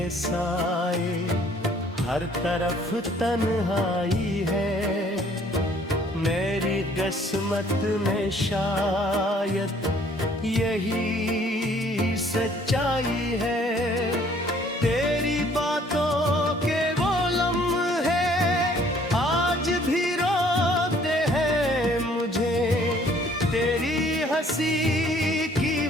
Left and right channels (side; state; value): both; normal; correlation 0.59